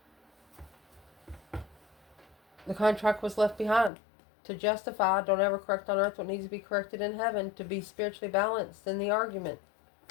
The contract was left behind. To justify, don't ever correct on earth what needs to be corrected in heaven. To be spiritually balanced in the argument.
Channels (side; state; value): right; drops out; at 3.9 s